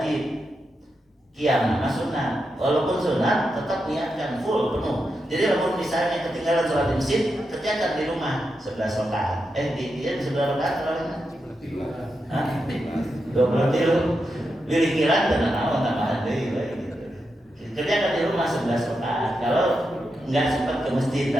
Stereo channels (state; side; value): normal; both; correlation 0.86